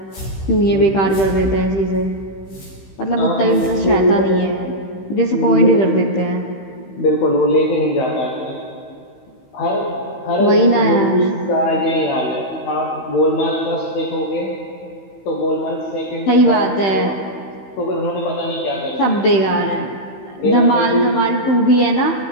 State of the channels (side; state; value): right; late; 15 ms